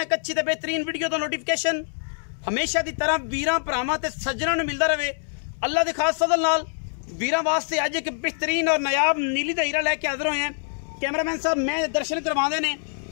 एक अच्छी ते बेहतरीन वीडियो तो नोटिफिकेशन हमेशा की तरह वीरां भरावां ते सज्जनां नूं मिलदा रहे। अल्लाह दे खास फजल नाल वीरां वास्ते अज एक बेहतरीन और नायाब नीली दा हीरा लैके हाजिर होए हैं। कैमरामैन साहब मैं दर्शन करवाते ने,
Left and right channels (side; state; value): right; silent; 62 dB below the other